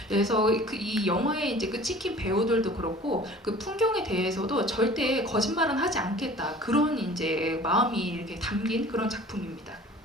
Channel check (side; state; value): both; normal; correlation 0.46